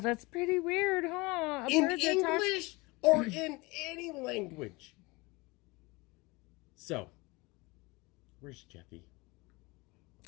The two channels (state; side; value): quieter; right; 24.5 dB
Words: pretty weird, huh? in English or in any language. So, where's Jeffy?